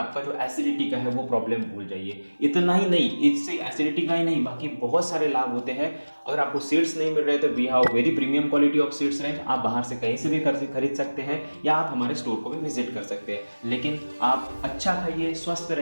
जो एसिडिटी का है वो प्रॉब्लम भूल जाइए। इतना ही नहीं, इससे एसिडिटी का ही नहीं, बाकी बहुत सारे लाभ होते हैं। अगर आपको सीड्स नहीं मिल रहे तो we have very premium quality of seeds range. आप बाहर से कहीं से भी खरीद सकते हैं, या आप हमारे स्टोर को भी विजिट कर सकते हैं। लेकिन आप अच्छा खाइए, स्वस्थ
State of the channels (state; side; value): inverted; both; correlation -1.00